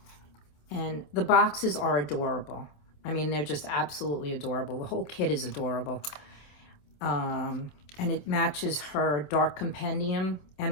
And the boxes are adorable. I mean, they're just absolutely adorable. The whole kit is adorable. And it matches her Dark Compendium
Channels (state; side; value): late; right; 27 ms